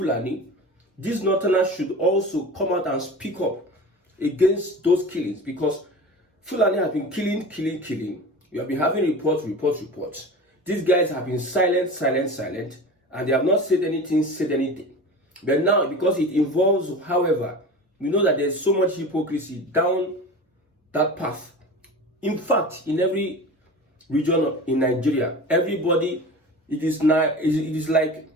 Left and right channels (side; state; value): both; normal; correlation 0.34